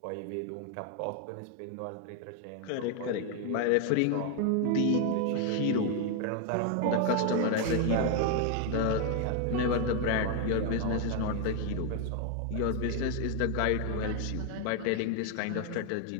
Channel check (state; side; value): different; both; correlation 0.01